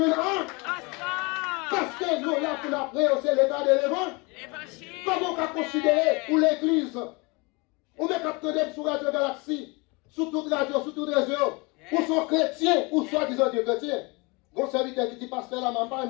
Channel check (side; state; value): right; quieter; 27.9 dB